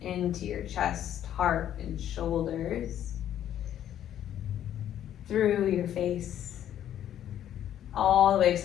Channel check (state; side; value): quieter; right; 10.9 dB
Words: into your chest, heart, and shoulders, through your face, all the way